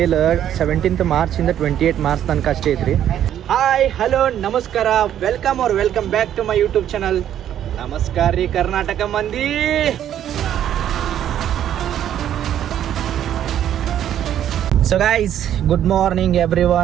17th ಮಾರ್ಚಿಂದ 28 ಮಾರ್ಚ್ ತನಕ ಅಷ್ಟೇ ಐತ್ರಿ. ಹಾಯ್ ಹಲೋ ನಮಸ್ಕಾರ, welcome back to my YouTube channel. ನಮಸ್ಕಾರ ರೀ ಕರ್ನಾಟಕ ಮಂದಿ. So guys, good morning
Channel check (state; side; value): quieter; left; 10.6 dB